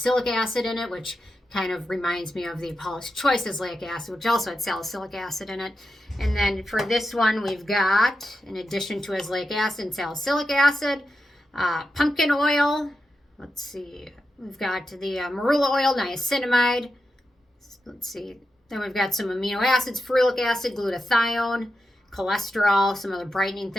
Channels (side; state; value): both; normal; correlation 0.88